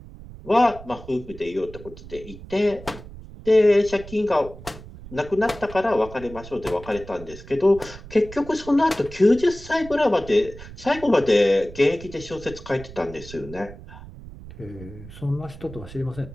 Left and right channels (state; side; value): noise; right; rumble, 16 dB below the sound